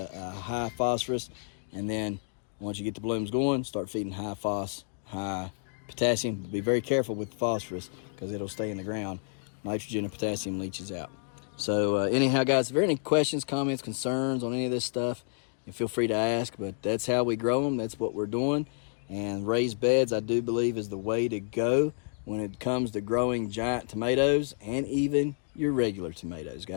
high phosphorus, and then once you get the blooms going, start feeding high phos, high potassium. But be very careful with the phosphorus because it'll stay in the ground. Nitrogen and potassium leaches out. So anyhow, guys, if there are any questions, comments, concerns on any of this stuff, you feel free to ask. But that's how we grow them. That's what we're doing. And raised beds, I do believe, is the way to go when it comes to growing giant tomatoes and even your regular tomatoes,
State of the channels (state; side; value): silent; right; digital silence